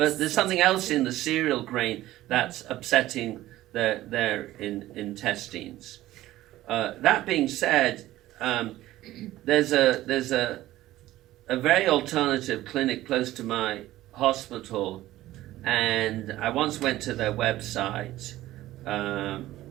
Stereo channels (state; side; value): quieter; left; 15.5 dB